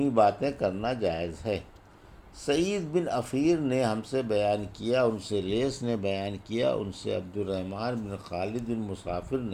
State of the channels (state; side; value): identical; both; correlation 1.00